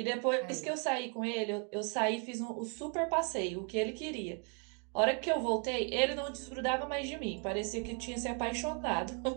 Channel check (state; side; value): quieter; left; 38.6 dB